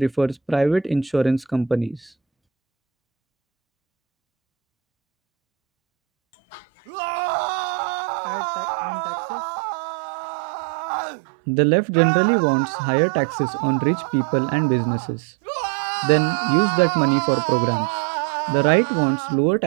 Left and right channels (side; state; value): left; drops out; at 7.2 s